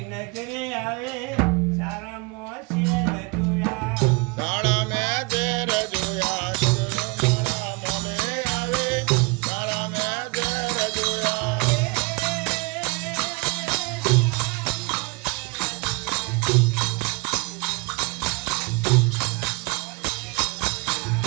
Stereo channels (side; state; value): left; quieter; 28.4 dB